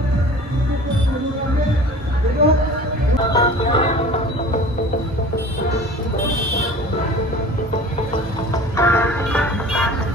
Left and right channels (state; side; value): normal; both; correlation 0.42